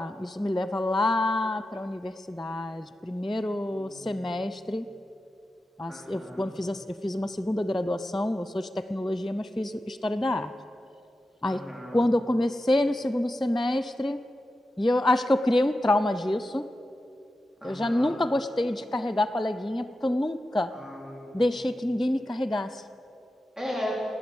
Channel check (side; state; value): both; normal; correlation 0.91